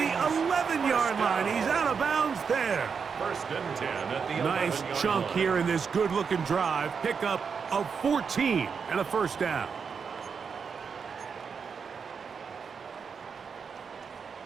11-yard line. He's out of bounds there. 1st and 10 at the 11-yard line. Nice chunk here in this good-looking drive. Pickup of 14 and a first down.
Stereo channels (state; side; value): quieter; left; 6.0 dB